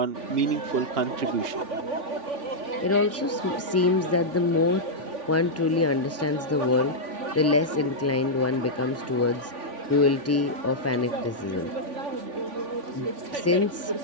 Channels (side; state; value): both; normal; correlation -0.07